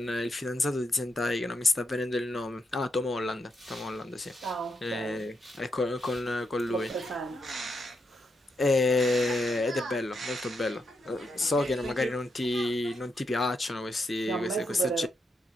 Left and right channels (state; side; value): normal; both; correlation 0.82